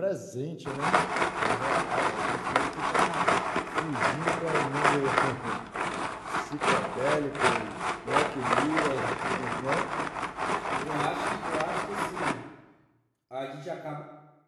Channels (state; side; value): identical; both; correlation 1.00